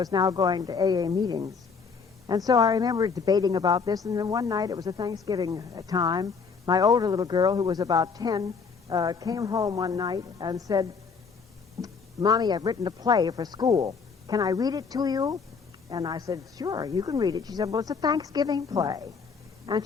now going to AA meetings. And so I remember debating about this, and then one night, it was a Thanksgiving time, my older little girl, who was about 10, came home one night and said, Mommy, I've written a play for school. Can I read it to you? And I said, sure, you can read it. She said, well, it's a Thanksgiving play. And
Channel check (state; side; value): quieter; right; 5.4 dB